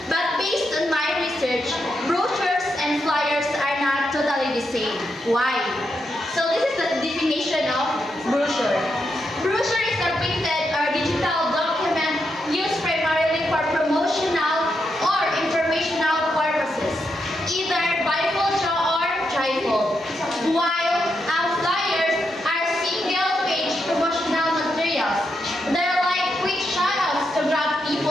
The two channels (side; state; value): both; normal; correlation 0.83